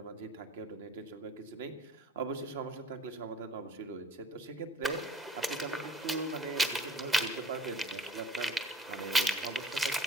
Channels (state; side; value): normal; both; correlation 0.50